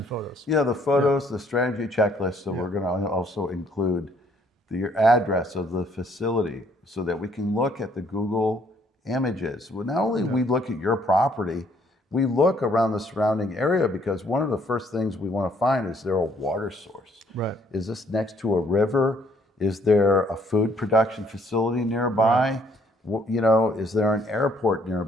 photos. Yeah, the photos, the strategy checklist. So we're going to also include the address of the facility so that we can look at the Google images. Well, not only we look at your property, we look around the surrounding area, because one of the first things we want to find is there a water source? Right. Is this next to a river? Is there a food production facility nearby? You know, is there an airport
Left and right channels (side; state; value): both; normal; correlation 0.65